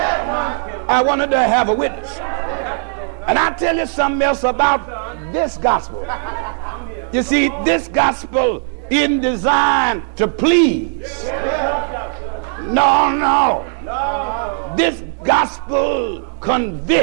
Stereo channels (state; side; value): silent; left; digital silence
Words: I wanted to have a witness. And I'll tell you something else about this gospel. You see, this gospel isn't designed to please. No. This gospel